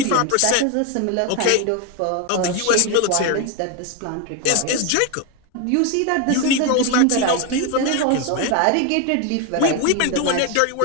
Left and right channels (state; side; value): different; both; correlation 0.01